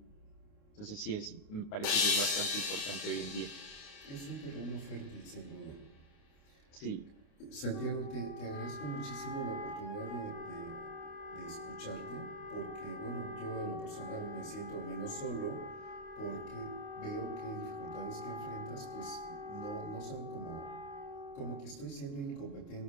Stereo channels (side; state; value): right; late; 29 ms